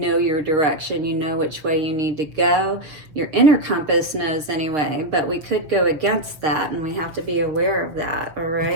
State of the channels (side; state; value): left; late; 6.6 ms